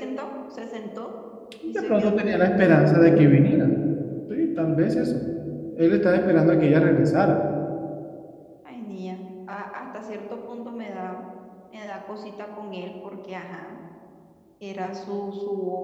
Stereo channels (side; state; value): both; identical; correlation 1.00